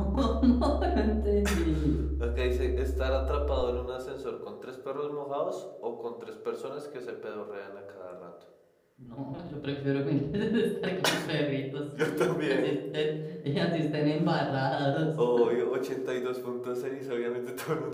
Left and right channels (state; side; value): identical; both; correlation 1.00